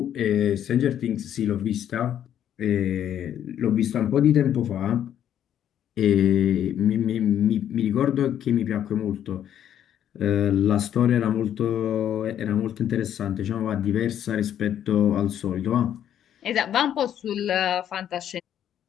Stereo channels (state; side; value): quieter; right; 10.2 dB